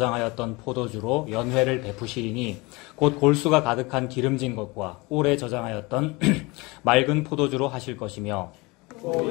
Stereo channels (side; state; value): right; quieter; 24.7 dB